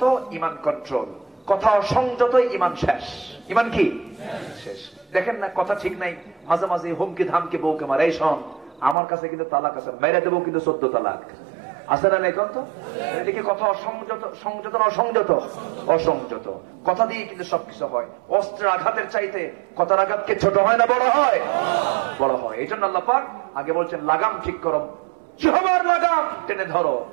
ইমান কন্ট্রোল। কথা সংযত, ইমান শেষ। ইমান কি শেষ? দেখেন না, কথা ঠিক নাই, মাঝে মাঝে হুমকি ধামকি বউকে মারে, এই শোন আমার কাছে কিন্তু তালাক আছে, মেরে দেবো কিন্তু 14 তালাক আছে না? এখন তো এদিকে কথা অসংযত, সংযত না অসংযত? অসংযত। কথা দিয়ে কিন্তু সবকিছু হয়। অস্ত্রের আঘাতের চাইতে কথার আঘাতকে ছোট হয় না বড় হয়? বড় হয়। এই জন্য আল্লাহ পাক আগে বলছেন লাগাম ঠিক করো, জিহ্বার লাগাম টেনে ধরো,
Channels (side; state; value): left; drops out; at 9.0 s